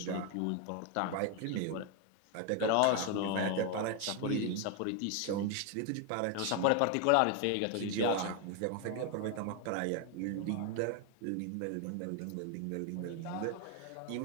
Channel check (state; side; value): different; both; correlation 0.01